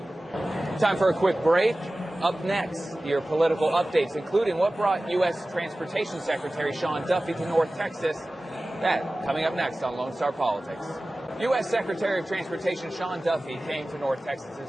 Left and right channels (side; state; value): both; normal; correlation 0.97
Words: Time for a quick break. Up next, your political updates, including what brought U.S. Transportation Secretary Sean Duffy to North Texas. That coming up next on Lone Star Politics. U.S. Secretary of Transportation Sean Duffy came to North Texas